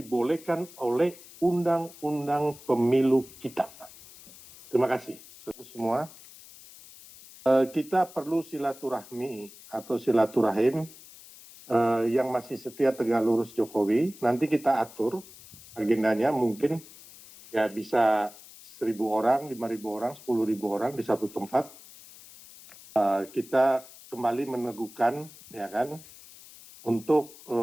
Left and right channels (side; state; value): left; noise; hiss, 20 dB below the sound